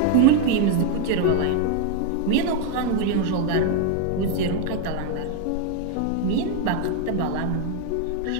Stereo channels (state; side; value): different; both; correlation 0.00